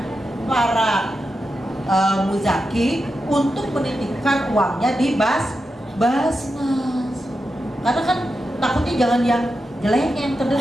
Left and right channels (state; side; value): normal; both; correlation 0.88